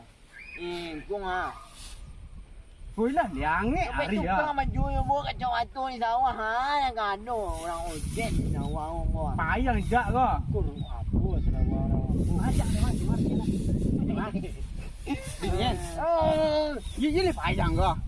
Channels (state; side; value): identical; both; correlation 1.00